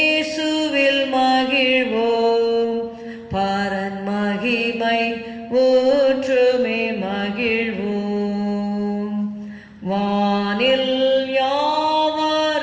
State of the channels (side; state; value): both; identical; correlation 1.00